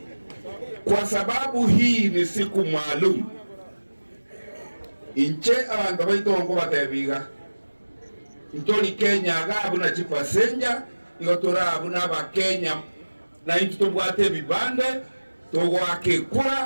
Kwa sababu hii ni siku maalum, inche abantu baitongo batebiga ntoli Kenya gabu na chipasenja igotora abuna ba Kenya na into tobwate bibande togwake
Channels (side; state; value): both; inverted; correlation -1.00